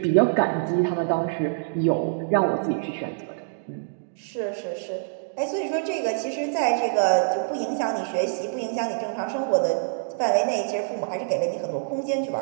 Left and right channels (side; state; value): left; silent; digital silence